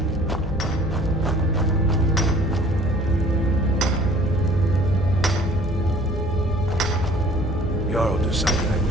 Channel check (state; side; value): noise; left; hum, 8 dB below the sound